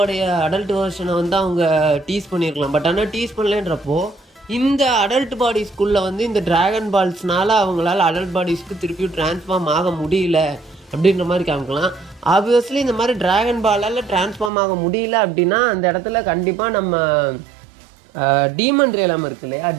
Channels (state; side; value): drops out; left; at 14.5 s